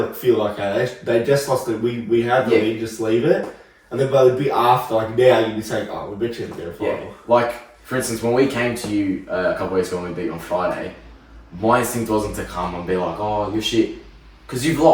feel like, hey, they just lost it. We had the Yeah. win, just leave it. And then but it'd be after, like now, you'd be saying, "Oh, we beat you in the grand Yeah. final." Like, for instance, when we came to you a couple weeks ago when we beat you on Friday, my instinct wasn't to come and be like, oh, you're shit. Because you've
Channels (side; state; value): both; identical; correlation 1.00